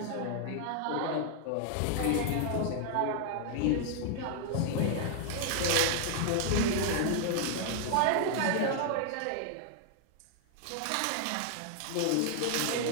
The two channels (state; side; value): different; both; correlation 0.00